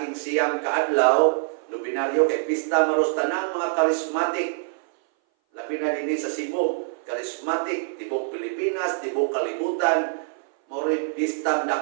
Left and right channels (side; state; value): left; silent; 58 dB below the other